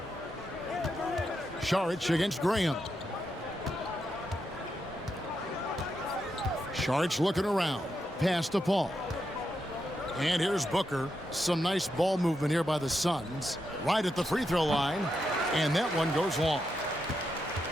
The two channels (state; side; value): normal; both; correlation 0.84